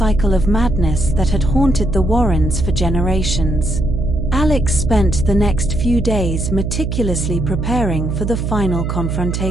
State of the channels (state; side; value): noise; right; hum, 1 dB below the sound